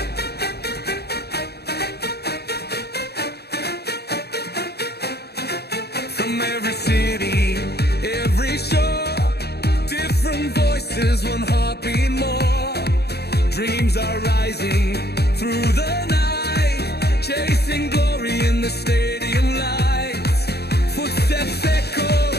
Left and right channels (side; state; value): right; late; 0.47 ms